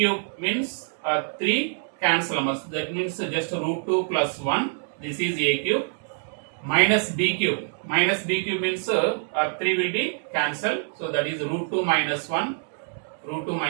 means 3 cancel. That means just root 2 plus 1. This is a cube minus b cube. Minus b cube means 3 will be cancelled. So that is root 2 minus 1. Root 2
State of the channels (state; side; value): silent; left; digital silence